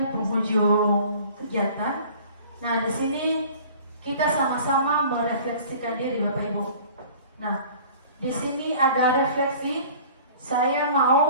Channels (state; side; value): inverted; both; correlation -0.47